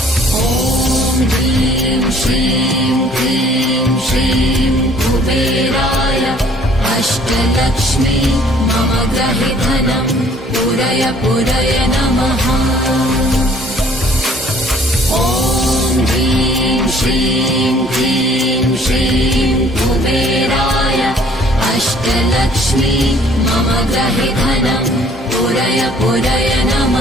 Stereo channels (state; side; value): normal; both; correlation 0.57